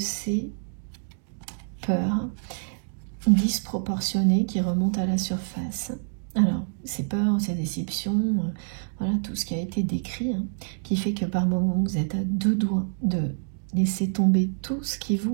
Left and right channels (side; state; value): left; silent; digital silence